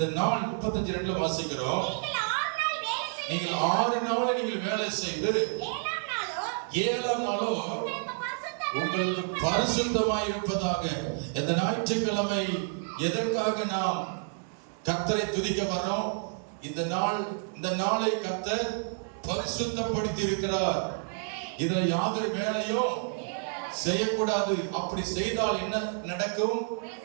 நாள் 35:2 வாசிக்கிறோம். நீங்கள் 6 நாள் நீங்கள் வேலை செய்து 7ஆம் நாளோ உங்களுக்கு பரிசுத்தமாய் இருப்பதாக. இந்த ஞாயிற்றுக்கிழமை எதற்காக நாம் கர்த்தரை துதிக்க வரோம்? இந்த நாளை கர்த்தர் பரிசுத்தப்படுத்தி இருக்கிறார். இதுல யாதொரு வேலையும் செய்யக்கூடாது. அப்படி செய்தால் என்ன நடக்கும்?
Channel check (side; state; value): left; silent; 58 dB below the other